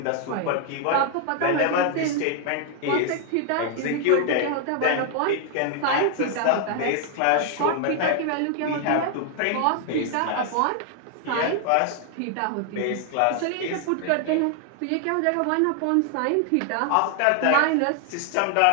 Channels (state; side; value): different; both; correlation 0.00